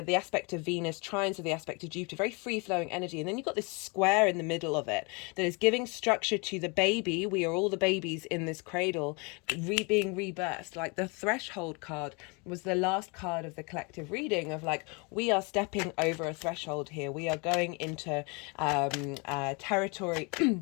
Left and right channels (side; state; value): right; quieter; 31.0 dB